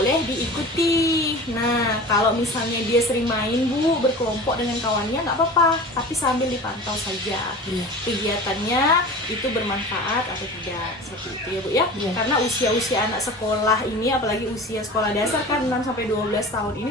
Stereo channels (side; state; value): both; normal; correlation 0.36